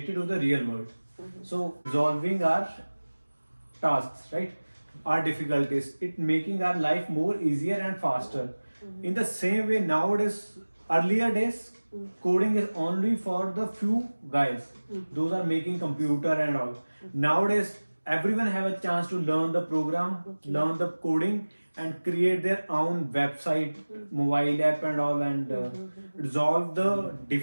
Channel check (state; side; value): inverted; both; correlation -1.00